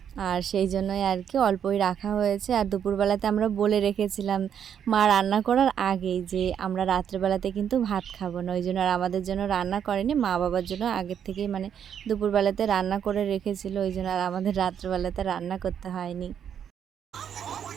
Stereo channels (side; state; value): left; quieter; 8.6 dB